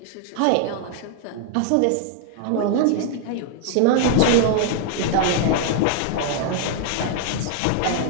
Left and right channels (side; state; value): both; different; correlation 0.00